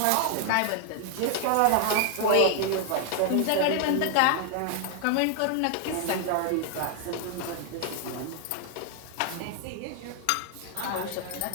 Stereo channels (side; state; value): both; different; correlation 0.00